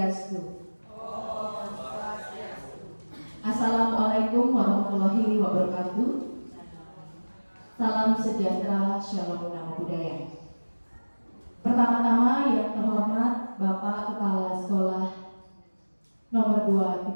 Assalamualaikum warahmatullahi wabarakatuh. Salam sejahtera, shalom namo buddhaya. Pertama-tama yang terhormat Bapak Kepala Sekolah nomor 2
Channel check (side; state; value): both; inverted; correlation -1.00